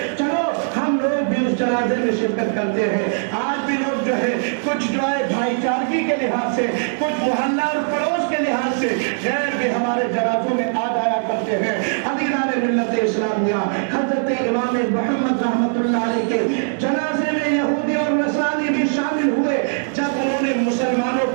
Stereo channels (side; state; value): left; silent; 65 dB below the other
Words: چلو ہم لوگ بھی اس جنازے میں شرکت کرتے ہیں. آج بھی لوگ جو ہے کچھ جو ہے بھائی چارگی کے لحاظ سے، کچھ محلہ اور پڑوس کے لحاظ سے غیر بھی ہمارے جنازوں میں آ جایا کرتے کرتے ہیں۔ عزیزان ملت اسلامیہ، حضرت امام محمد رحمت اللہ علیہ کے جنازے میں یہودی اور نصرانی بھی شامل ہوئے۔ جب انہوں نے مسلمانوں